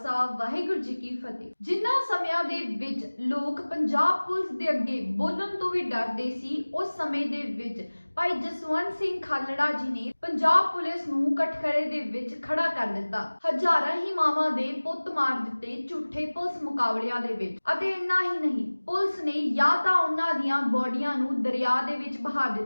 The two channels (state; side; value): inverted; both; correlation -1.00